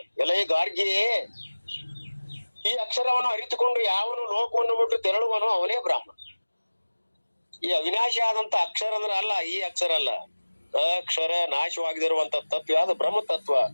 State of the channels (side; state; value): both; inverted; correlation -1.00